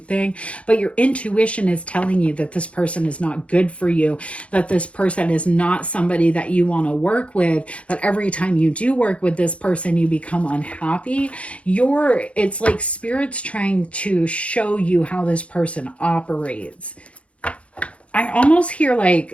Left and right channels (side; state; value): right; late; 0.062 ms